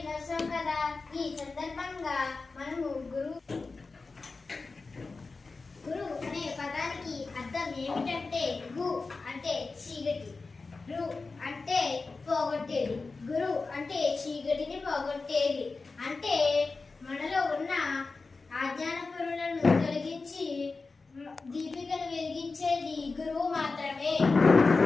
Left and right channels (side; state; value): right; quieter; 4.0 dB